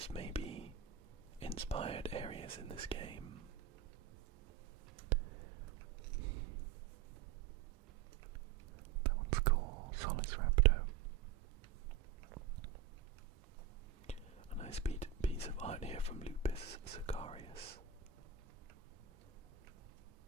may be inspired areas in this game. That one's cool. Solace Raptor. A nice piece of art here from Lupus Sicarius.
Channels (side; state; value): left; quieter; 8.5 dB